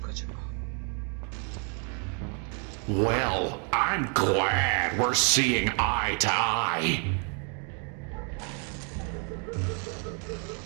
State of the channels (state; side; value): quieter; left; 39.1 dB